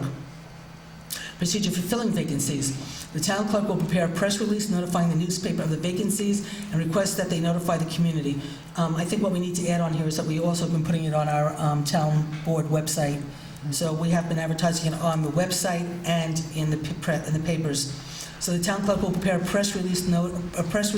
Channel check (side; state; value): both; identical; correlation 1.00